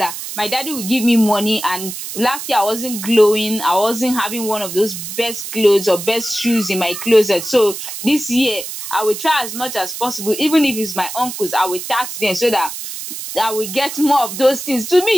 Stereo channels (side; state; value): right; noise; hiss, 8 dB below the sound